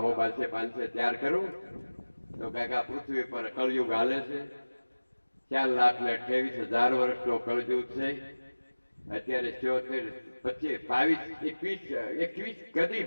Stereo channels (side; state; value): both; inverted; correlation -1.00